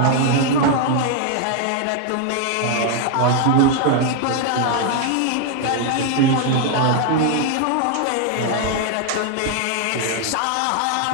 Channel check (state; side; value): different; both; correlation 0.00